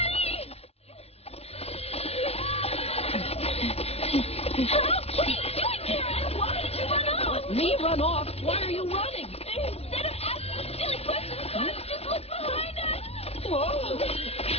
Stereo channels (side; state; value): right; late; 0.30 ms